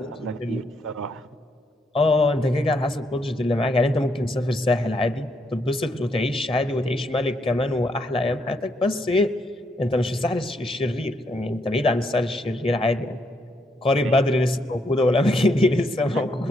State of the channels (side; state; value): both; normal; correlation 0.76